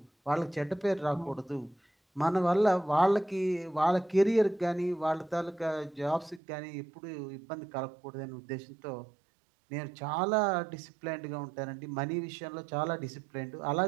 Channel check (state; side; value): drops out; left; at 6.4 s